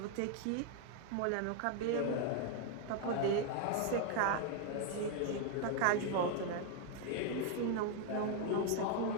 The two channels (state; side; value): different; both; correlation 0.00